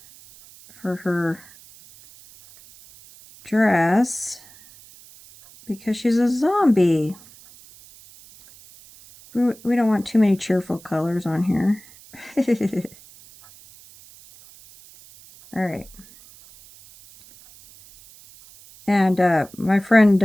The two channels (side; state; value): right; noise; hiss, 23 dB below the sound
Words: for her dress because she's a zombie. We don't want too many cheerful colors on here. All right. And my friend